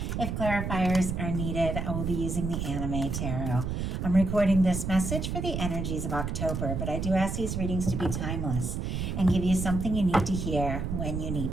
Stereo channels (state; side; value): noise; right; rumble, 2 dB below the sound